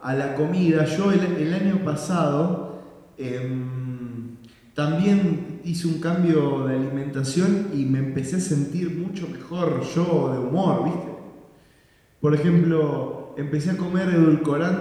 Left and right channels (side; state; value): both; identical; correlation 1.00